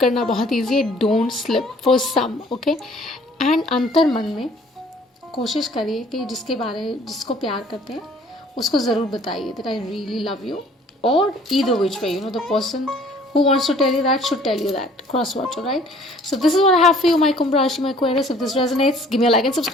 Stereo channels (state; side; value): normal; both; correlation 0.56